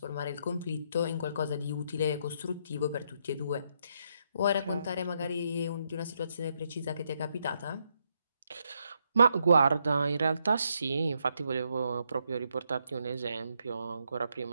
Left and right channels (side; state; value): both; inverted; correlation -0.77